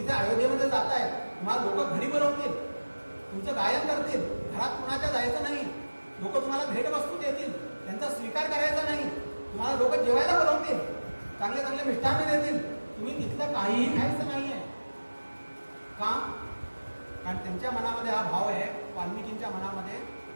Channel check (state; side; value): inverted; both; correlation -1.00